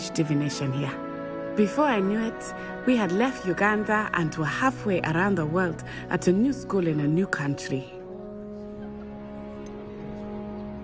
divination here. Before I knew it, we had left Uganda and were halfway around the world at a new school in a new country.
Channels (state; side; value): identical; both; correlation 1.00